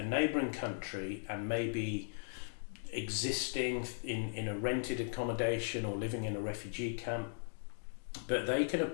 neighbouring country and maybe existing in a rented accommodation or living in a refugee camp. But they can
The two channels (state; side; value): silent; right; digital silence